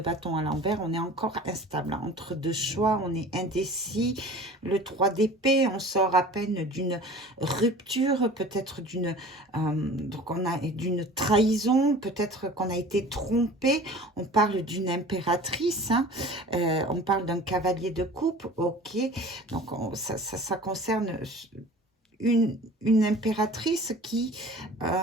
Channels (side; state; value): both; normal; correlation 0.42